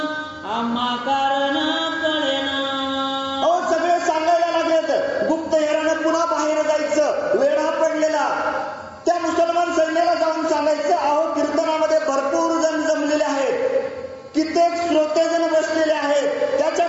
आम्हा कारण कळेना. अहो सगळे सांगायला लागलेत, गुप्त हेरानं पुन्हा बाहेर जायचं, वेढा पडलेला. त्या मुसलमान सैन्याला जाऊन सांगायचं, अहो कीर्तनामध्ये भरपूर जण जमलेले आहेत, कित्येक श्रोतेजण बसलेले आहेत,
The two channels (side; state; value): both; identical; correlation 1.00